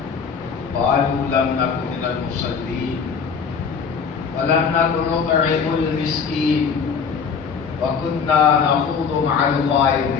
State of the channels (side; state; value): right; quieter; 6.1 dB